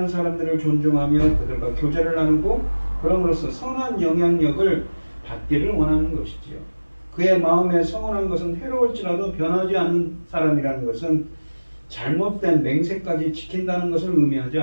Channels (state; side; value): inverted; both; correlation -1.00